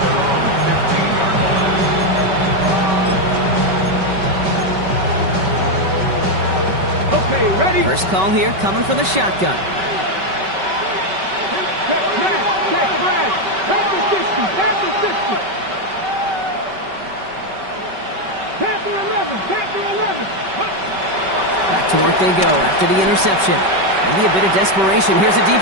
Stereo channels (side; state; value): left; late; 5.2 ms